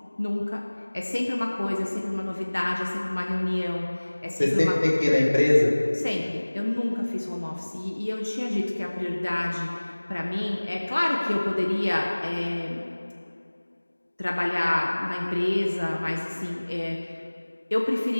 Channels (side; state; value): both; inverted; correlation -1.00